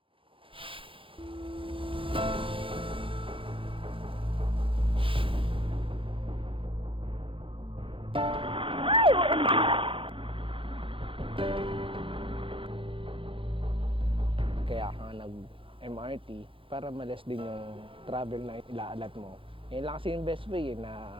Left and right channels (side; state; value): left; late; 0.25 ms